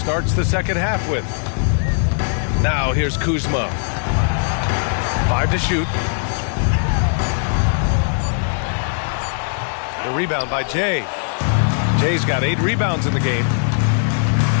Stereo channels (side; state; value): right; silent; 66 dB below the other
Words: the second half with. Now here's Kuzma. 5 to shoot. The rebound by Jay. Jay's got 8 rebounds in the game.